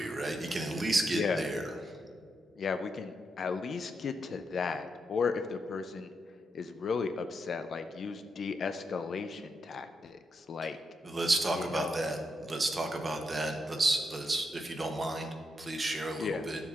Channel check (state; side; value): normal; both; correlation 0.82